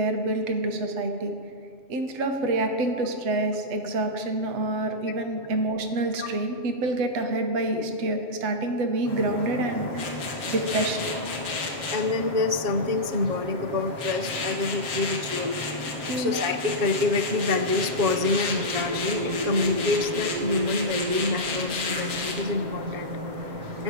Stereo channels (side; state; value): left; late; 7.5 ms